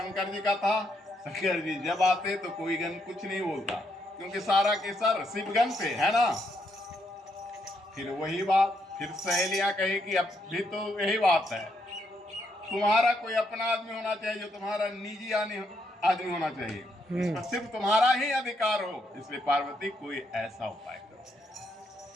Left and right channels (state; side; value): normal; both; correlation 0.76